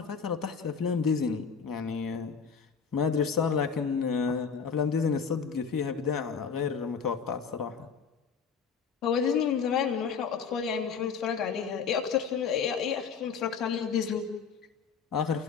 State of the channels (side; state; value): right; quieter; 6.2 dB